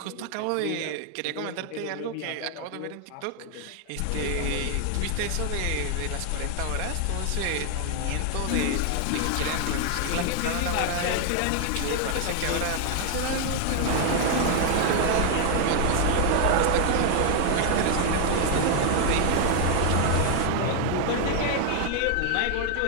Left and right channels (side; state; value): both; different; correlation 0.00